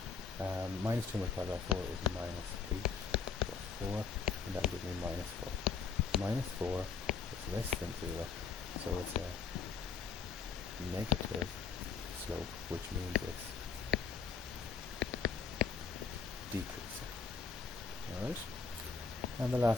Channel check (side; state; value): right; quieter; 5.7 dB